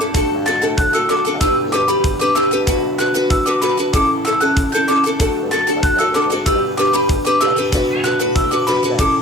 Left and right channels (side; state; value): both; normal; correlation 0.55